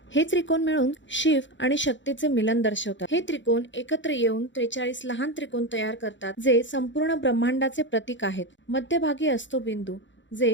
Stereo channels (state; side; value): late; right; 0.54 ms